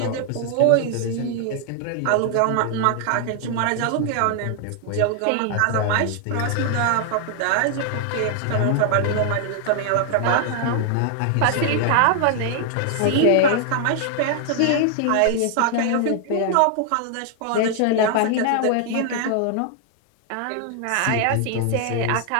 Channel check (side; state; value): both; different; correlation 0.00